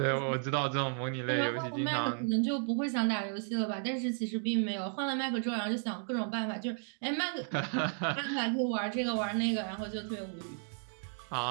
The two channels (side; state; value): left; silent; 55 dB below the other